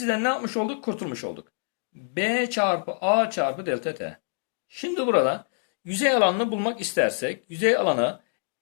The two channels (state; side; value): silent; right; digital silence